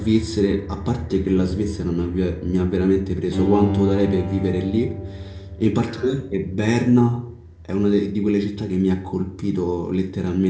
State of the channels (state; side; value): identical; both; correlation 1.00